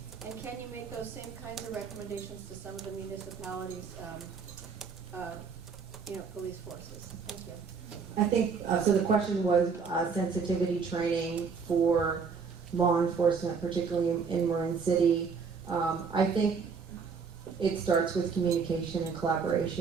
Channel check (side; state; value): left; quieter; 5.5 dB